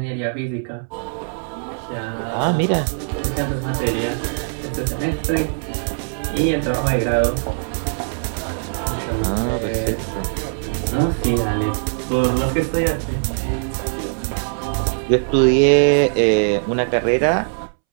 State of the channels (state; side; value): silent; left; 65 dB below the other